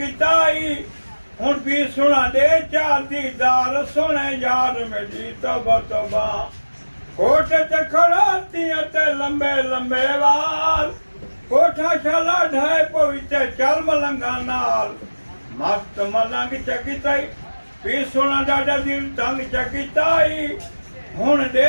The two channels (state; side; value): inverted; both; correlation -1.00